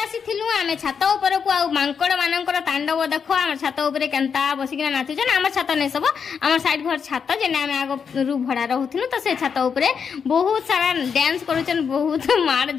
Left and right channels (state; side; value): quieter; right; 6.5 dB